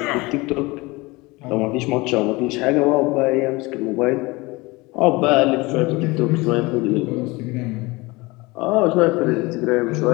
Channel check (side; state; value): right; quieter; 23.2 dB